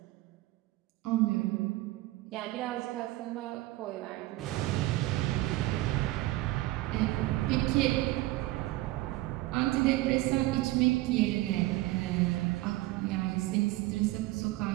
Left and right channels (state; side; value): quieter; left; 18.4 dB